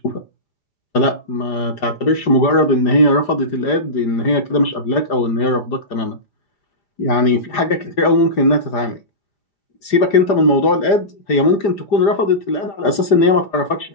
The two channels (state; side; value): late; right; 5.0 ms